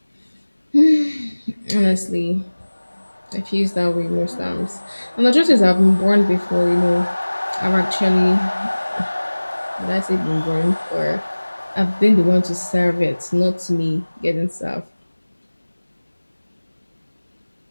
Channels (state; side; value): inverted; both; correlation -1.00